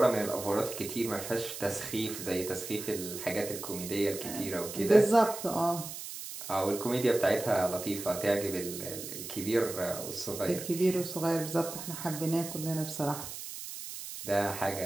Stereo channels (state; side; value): noise; right; hiss, 9 dB below the sound